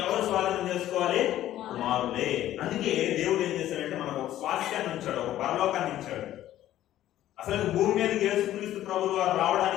ఎవరు స్వాధీనం చేసుకోవాలి? కుమారుడే. అందుకే దేవుడు ఏం చేశాడంటే మనకు ఒక స్వాస్థ్యాన్ని ఇచ్చాడు, ఒక పరలోకాన్ని ఇచ్చాడు. అసలు భూమి మీదకి యేసుక్రీస్తు ప్రభువు వారు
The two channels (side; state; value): right; quieter; 13.1 dB